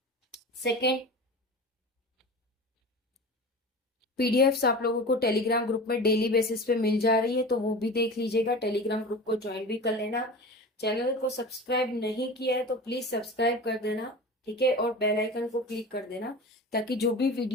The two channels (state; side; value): normal; both; correlation 0.33